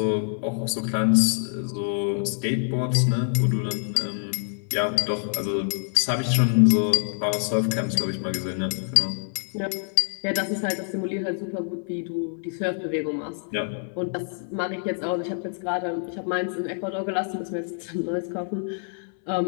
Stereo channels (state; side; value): silent; right; 61 dB below the other